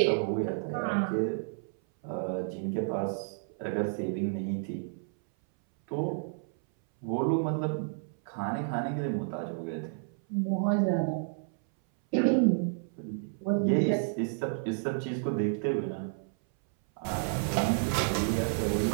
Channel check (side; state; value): left; silent; 57 dB below the other